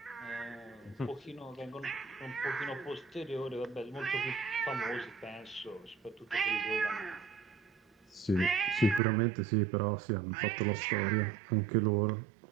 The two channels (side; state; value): left; drops out; at 9.0 s